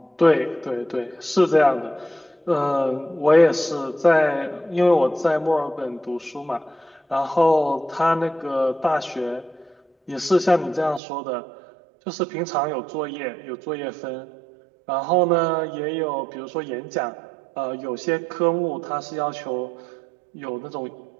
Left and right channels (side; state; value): left; drops out; at 11.0 s